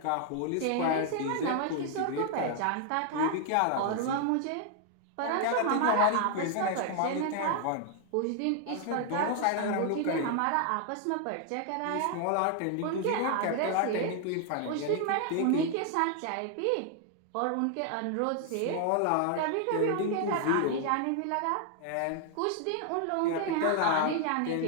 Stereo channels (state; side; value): different; both; correlation 0.00